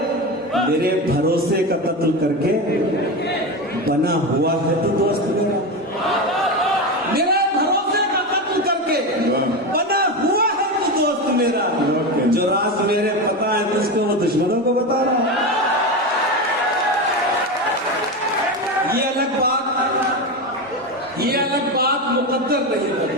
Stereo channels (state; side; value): normal; both; correlation 0.18